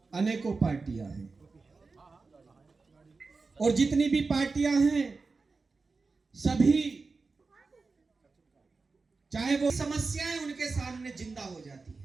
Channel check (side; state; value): left; quieter; 4.1 dB